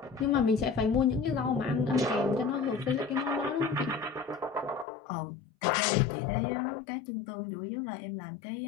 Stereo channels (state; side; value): drops out; right; at 4.9 s